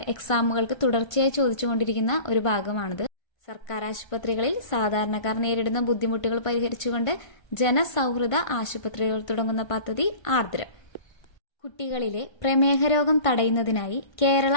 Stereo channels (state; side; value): late; right; 1.5 ms